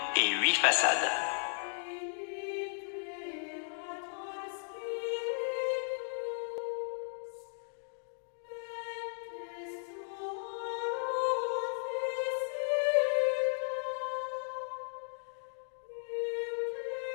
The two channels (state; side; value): silent; right; digital silence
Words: et 8 façades.